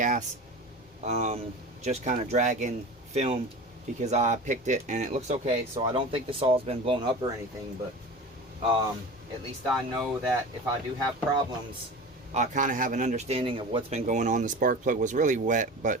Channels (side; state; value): both; normal; correlation 0.33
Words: Just kind of dragging film because I picked it and it looks okay. So I don't think the saw's been blown up or anything, but at least I know that if I do have problems, I kind of have an understanding of what's been going on. The spark plug was really wet,